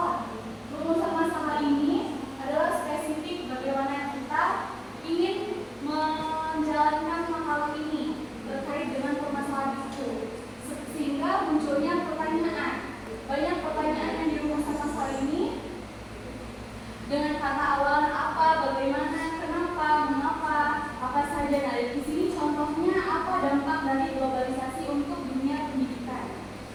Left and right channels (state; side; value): identical; both; correlation 1.00